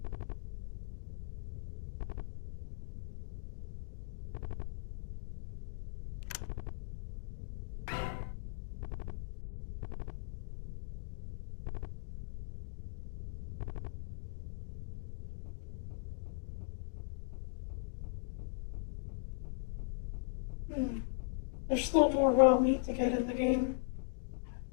There's still more raw meat to get in the game.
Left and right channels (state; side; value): silent; right; digital silence